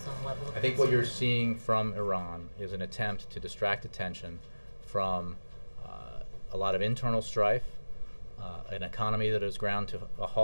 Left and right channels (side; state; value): both; inverted; correlation -1.00